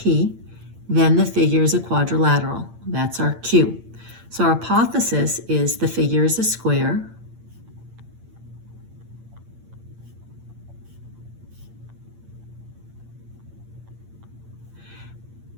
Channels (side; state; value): left; late; 8.8 ms